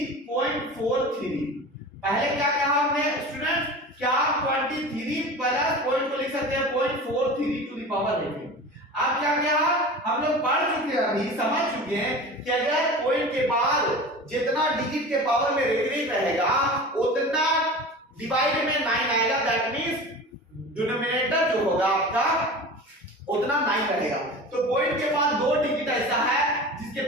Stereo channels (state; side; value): normal; both; correlation 0.35